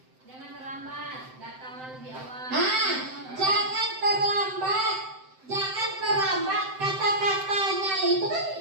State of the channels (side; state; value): left; late; 7.8 ms